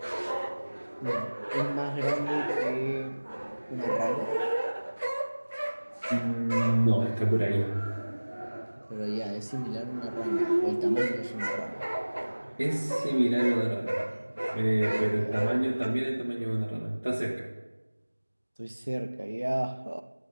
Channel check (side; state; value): both; inverted; correlation -1.00